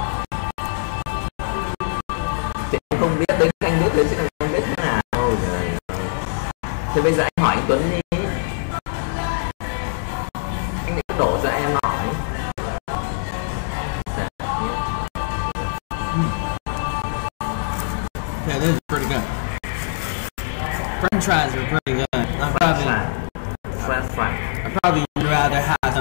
Chị không biết đến anh biết đến chứ anh biết thế nào. Thì bây giờ anh hỏi anh Tuấn đi. Okay, this is pretty good. French fries are pretty good. French fry. I'd probably rather have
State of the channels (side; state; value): right; silent; digital silence